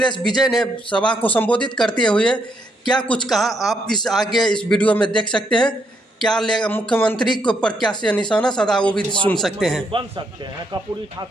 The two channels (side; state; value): both; normal; correlation 0.75